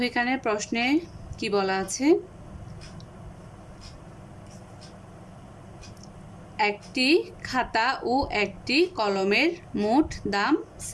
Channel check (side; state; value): both; identical; correlation 1.00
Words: এখানে প্রশ্নে কি বলা আছে। একটি খাতা ও একটি কলমের মোট দাম